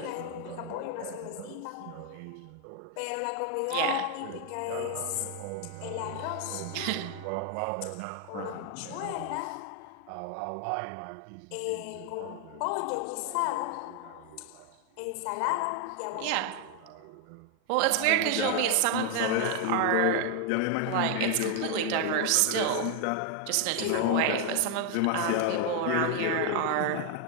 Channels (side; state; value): both; different; correlation 0.01